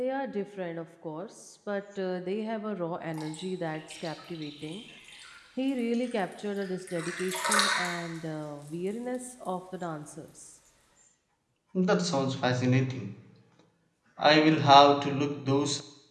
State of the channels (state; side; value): identical; both; correlation 1.00